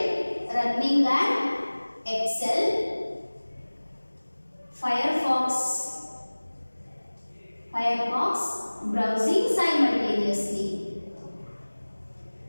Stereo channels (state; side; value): inverted; both; correlation -1.00